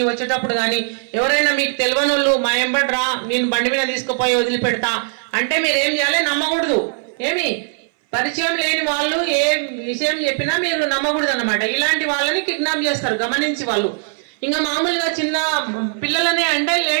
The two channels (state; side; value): silent; left; 61 dB below the other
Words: వచ్చేటప్పుడు కానీ ఎవరైనా మీకు తెలియని వాళ్ళు మా ఎంబడి రా, నేను బండి మీద తీసుకుపోయి వదిలిపెడతా అంటే మీరు ఏం చేయాలి, నమ్మకూడదు. ఏమి పరిచయం లేని వాళ్ళు ఏ విషయం చెప్పినా మీరు నమ్మకూడదు అన్నమాట. ఇలాంటి వాళ్ళని కిడ్నాప్ చేస్తారు గమనించి వాళ్ళు. ఇంకా మామూలుగా చిన్న పిల్లలని అంటే